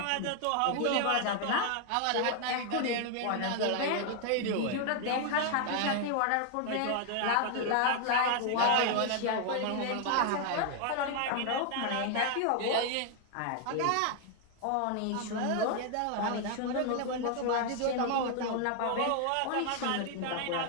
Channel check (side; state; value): both; different; correlation 0.00